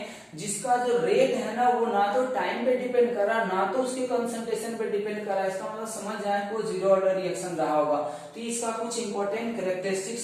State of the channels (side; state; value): both; identical; correlation 1.00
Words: जिसका जो रेट है ना वो ना तो टाइम पे डिपेंड कर रहा ना तो उसके कंसंट्रेशन पे डिपेंड कर रहा है, इसका मतलब समझ जाए कि वो जीरो ऑर्डर रिएक्शन रहा होगा। तो इसका कुछ इंपॉर्टेंट